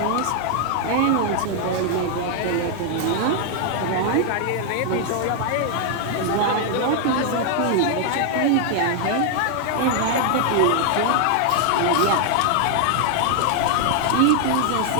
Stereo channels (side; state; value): both; different; correlation 0.00